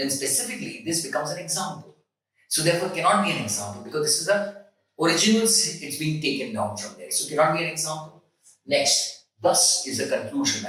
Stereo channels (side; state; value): both; identical; correlation 1.00